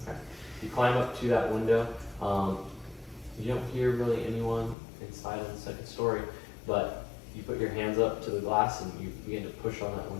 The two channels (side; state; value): right; drops out; at 4.8 s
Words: You climb up to that window. You don't hear really anyone inside on the second story, but you put your hands up to the glass and you begin to push on that